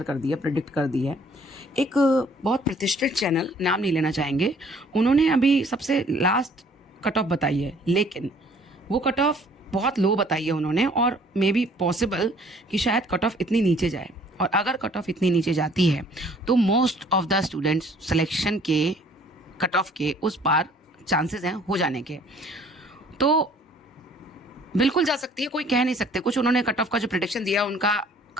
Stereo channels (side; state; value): both; normal; correlation 0.57